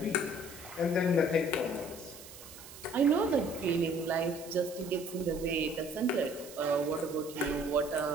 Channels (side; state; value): right; noise; hiss, 16 dB below the sound